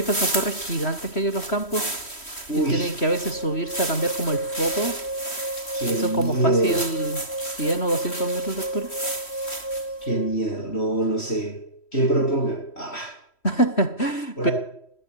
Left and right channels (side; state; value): right; late; 3.1 ms